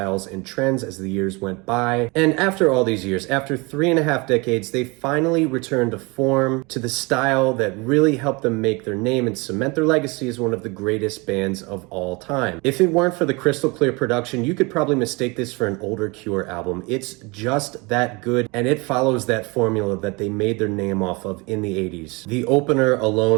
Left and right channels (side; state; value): left; quieter; 26.9 dB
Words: and trends as the years went by. And after all these years, after 3.5 decades, they finally returned to form, to the style that really helped them make their name and cement their legacy as one of the greatest bands of all time. If it weren't for the crystal clear production, you could probably mistake this for an older Cure album. It's just that good, and it follows that formula that they made their name off of in the 80s. The opener